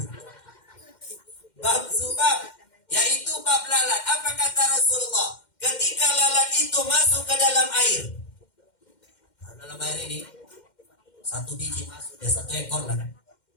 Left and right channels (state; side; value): late; right; 2.1 ms